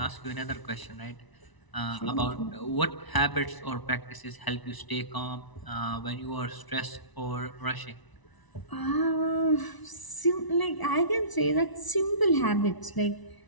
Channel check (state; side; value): late; right; 1.0 ms